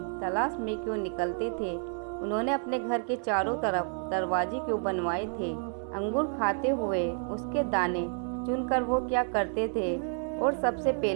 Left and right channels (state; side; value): silent; left; 58 dB below the other